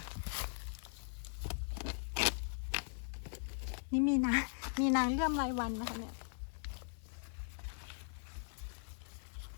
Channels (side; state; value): right; silent; 51 dB below the other